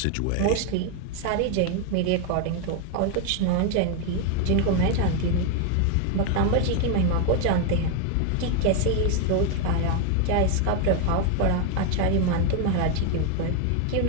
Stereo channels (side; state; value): both; different; correlation 0.01